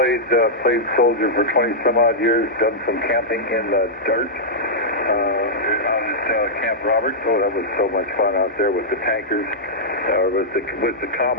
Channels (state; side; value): normal; both; correlation -0.09